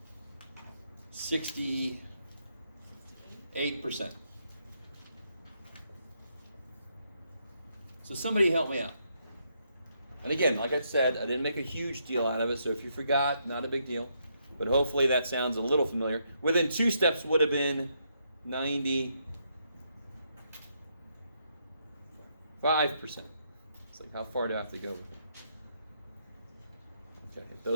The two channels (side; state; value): both; inverted; correlation -0.76